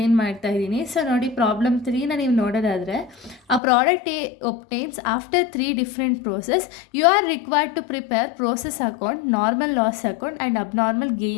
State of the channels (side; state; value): right; drops out; at 3.6 s